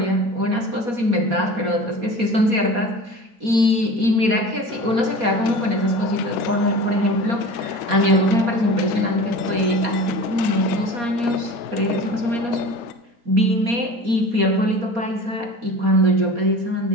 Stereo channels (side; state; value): left; late; 4.2 ms